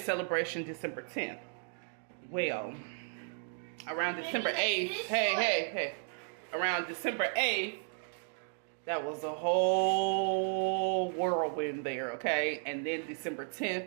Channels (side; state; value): left; silent; 55 dB below the other